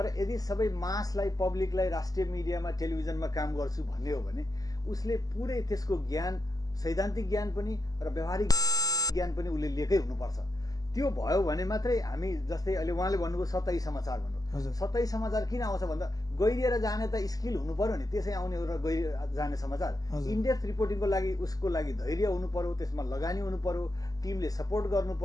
यदि सबै मासलाई, पब्लिकलाई राष्ट्रिय मिडियामा, टेलिभिजनमा काम गर्छु भन्ने हो भने उसले पुरै त्यसको ज्ञान, सैद्धान्तिक ज्ञान पनि र व्यावहारिक ज्ञान पनि उसले लिएकै हुनुपर्छ। त्यो भयो भने मात्रै हामी, जस्तै अहिले उहाँले भन्नुभयो सतही समाचार भन्नु, सतही समाचार किन आउँछ भन्दा गहिरिएर जाने त स्किल हुनु पर्यो नि, त्यसै आउने र गहिरिएर जाने समाचार। इनडेप्थ रिपोर्टिङको लागि उसको लागि धैर्य हुनु पर्यो, त्यसमा लगानी हुनु पर्यो, टिमले सपोर्ट गर्नु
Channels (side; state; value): right; late; 0.17 ms